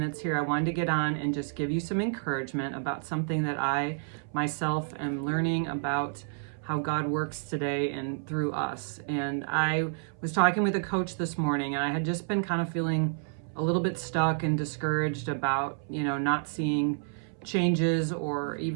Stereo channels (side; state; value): left; silent; 58 dB below the other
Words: here. I wanted to get on and just give you some encouragement about something that I myself am learning about how God works today and through us. And I was talking with a coach this morning, and I had just been kind of feeling a little bit stuck and discouraged about, not seeing changes or